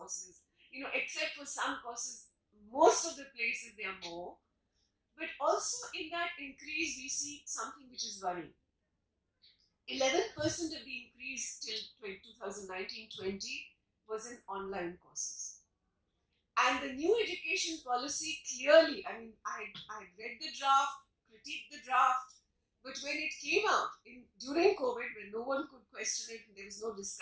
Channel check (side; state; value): both; identical; correlation 1.00